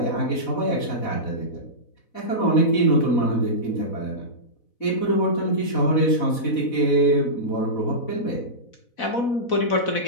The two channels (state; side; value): late; right; 4.1 ms